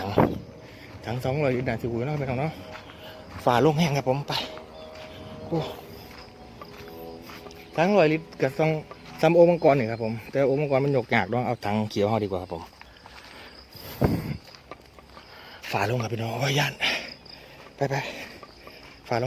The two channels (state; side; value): identical; both; correlation 1.00